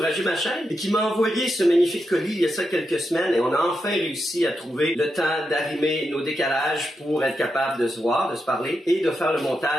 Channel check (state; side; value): normal; both; correlation 0.86